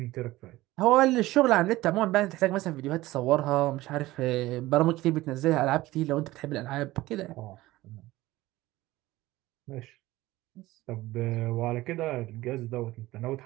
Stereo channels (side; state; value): left; quieter; 17.8 dB